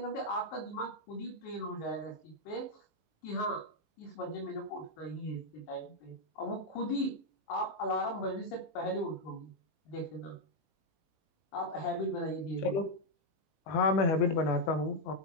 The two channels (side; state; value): right; late; 19 ms